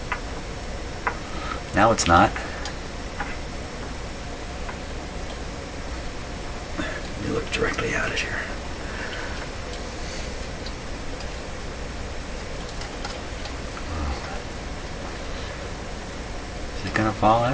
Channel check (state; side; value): identical; both; correlation 1.00